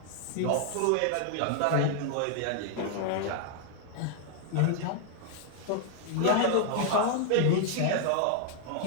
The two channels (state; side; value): different; both; correlation 0.00